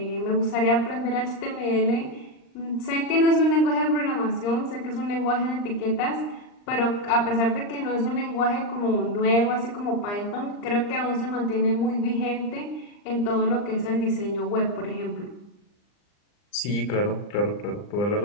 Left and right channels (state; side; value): late; right; 39 ms